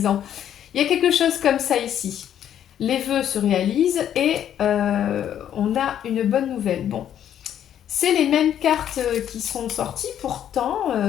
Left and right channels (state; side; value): quieter; right; 10.2 dB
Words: Il y a quelque chose comme ça ici. Les vœux se réalisent et on a une bonne nouvelle. Bon, c'est les mêmes cartes qui sont sorties, pourtant